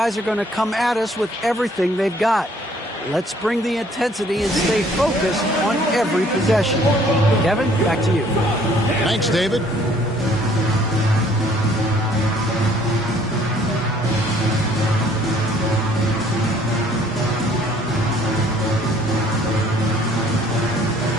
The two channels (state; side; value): normal; both; correlation 0.59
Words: are going to come at us with everything they've got. Let's bring the intensity and stay focused on every possession. Kevin, back to you. Thanks, David.